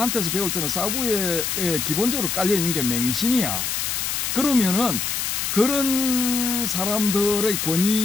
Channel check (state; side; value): noise; left; hiss, 1 dB below the sound